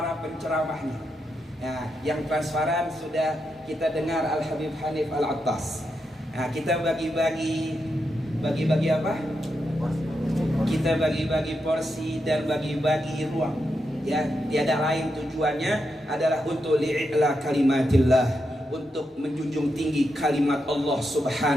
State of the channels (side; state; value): both; normal; correlation 0.84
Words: penceramahnya. Nah, yang transparan sudah kita dengar Al Habib Hanif Al Attas. Nah, kita bagi-bagi apa? Kita bagi-bagi porsi dan bagi-bagi ruang. Ya, tiada lain tujuannya adalah untuk li'ila kalimatillah, untuk menjunjung tinggi kalimat Allah